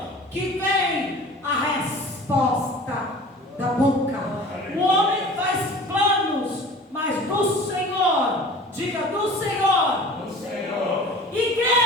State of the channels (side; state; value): both; normal; correlation 0.42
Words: que vem a resposta da boca. O homem faz planos, mas do Senhor, diga do Senhor, Do Senhor.